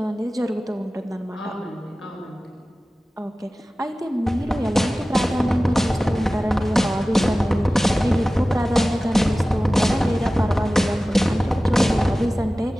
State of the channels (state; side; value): normal; both; correlation 0.96